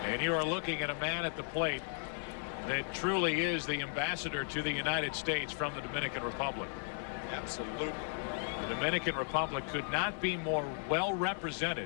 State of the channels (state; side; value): silent; right; digital silence